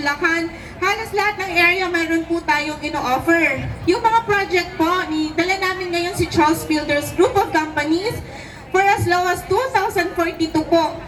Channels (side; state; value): both; identical; correlation 1.00